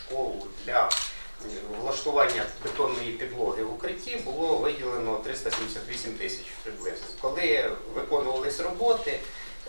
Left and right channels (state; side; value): inverted; both; correlation -1.00